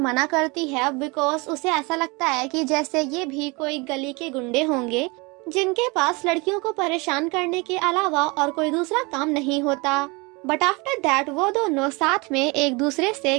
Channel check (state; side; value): quieter; left; 27.2 dB